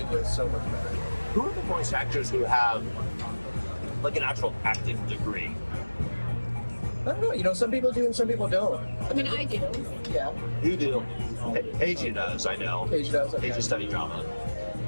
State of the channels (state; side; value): inverted; both; correlation -1.00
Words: so much better. who are the voice actors who have like an actual acting degree? I don't know. Some people do and some people don't. I mean, I do. Yeah. You do. Paige does, I know. Paige does. Okay. Paige studied drama.